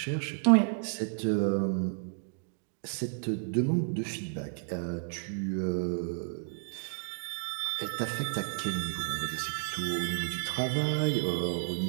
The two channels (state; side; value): silent; left; digital silence